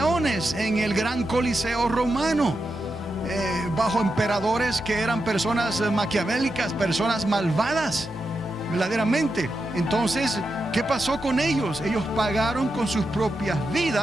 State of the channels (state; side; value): normal; both; correlation 0.87